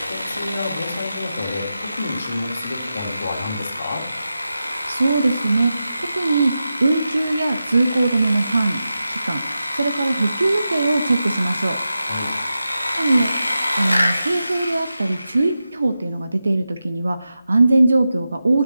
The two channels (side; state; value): both; inverted; correlation -0.91